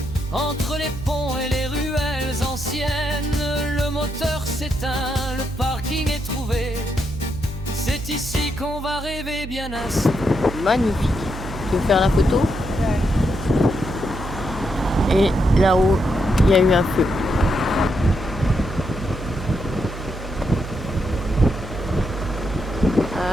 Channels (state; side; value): noise; right; hum, 9 dB below the sound